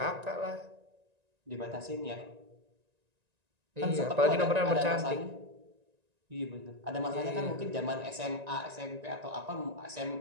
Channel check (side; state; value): left; late; 1.9 ms